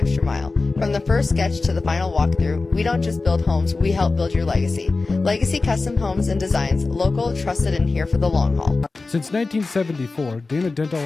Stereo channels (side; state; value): right; quieter; 3.7 dB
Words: mile. From the first sketch to the final walkthrough, we don't just build homes, we help build your legacy. Legacy Custom Homes and Designs, local, trusted, and here for the long haul. Since 1974, Dana Dental